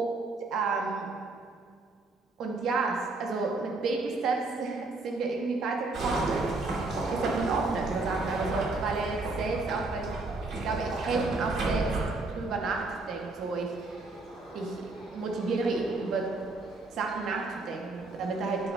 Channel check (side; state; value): left; quieter; 3.3 dB